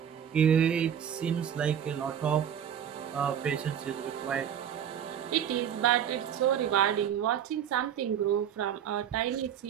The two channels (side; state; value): left; quieter; 9.0 dB